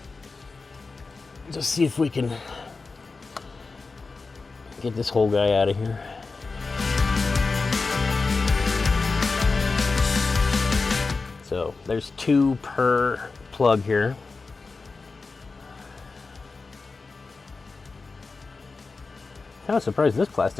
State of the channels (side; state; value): right; quieter; 4.1 dB